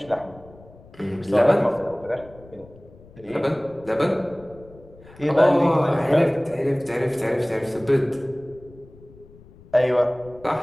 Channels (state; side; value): noise; left; rumble, 23 dB below the sound